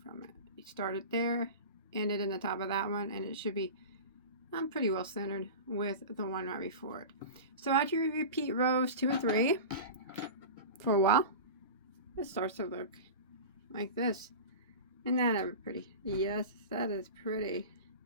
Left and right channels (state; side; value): inverted; both; correlation -0.30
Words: from it. You start it there, end it in the top of that one, and it should be pretty well centered with the one right before it. So after you repeat rows 2 and 3 for a while, it starts to look like this. Isn't that ever pretty? Yes, that is pretty.